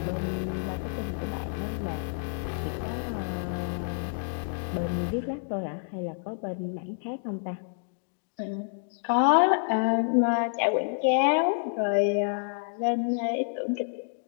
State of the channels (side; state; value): right; silent; digital silence